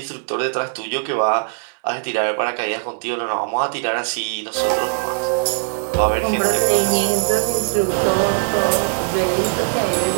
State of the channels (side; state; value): left; silent; digital silence